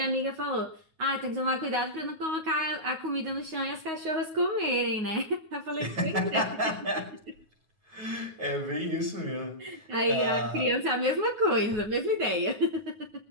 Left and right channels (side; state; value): left; late; 9.4 ms